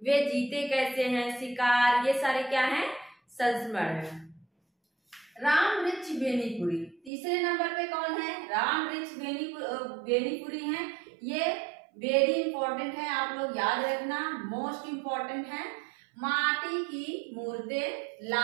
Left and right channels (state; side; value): drops out; left; at 7.1 s